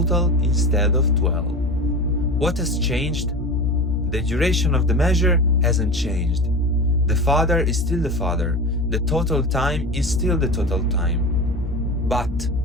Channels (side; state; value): both; normal; correlation 0.29